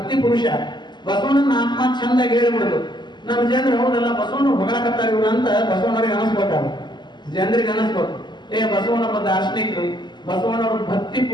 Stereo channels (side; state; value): right; late; 0.21 ms